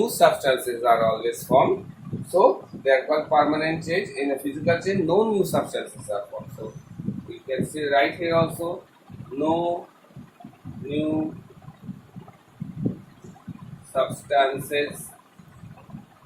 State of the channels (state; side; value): identical; both; correlation 1.00